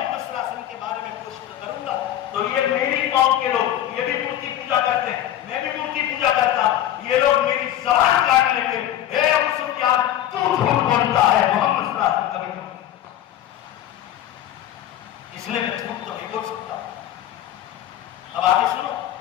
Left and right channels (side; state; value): right; quieter; 11.9 dB